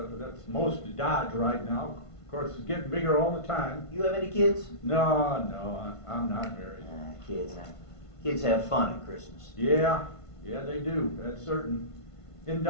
most of Dodge right now. Of course, it's getting bigger all the time. You have any kids? No, I'm not married. Kids. Kids have fun at Christmas. Yeah, they do. That's certain. In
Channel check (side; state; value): right; late; 1.5 ms